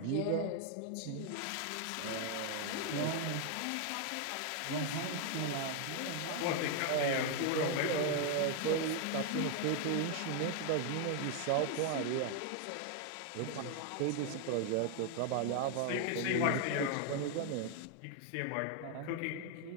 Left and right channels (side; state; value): both; different; correlation 0.00